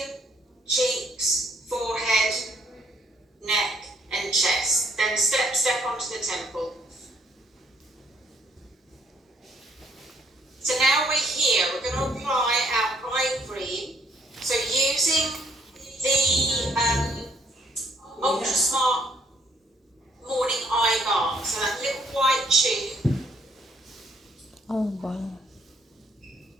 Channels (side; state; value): both; normal; correlation 0.68